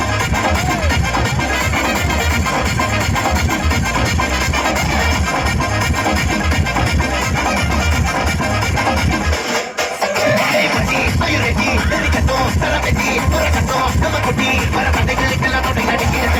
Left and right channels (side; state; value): both; identical; correlation 1.00